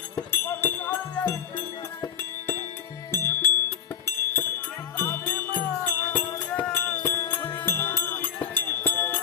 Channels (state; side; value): quieter; right; 8.4 dB